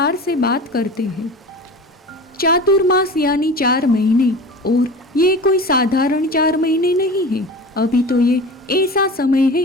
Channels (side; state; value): both; normal; correlation 0.35